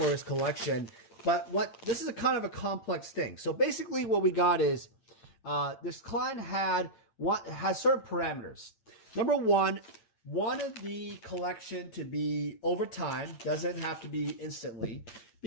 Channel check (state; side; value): late; right; 8.9 ms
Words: his collection. But this is a kind of a complex thing. So basically what we got is this client has certain parameters. Number one, wanted the collection to be over time, doesn't have to be instantly.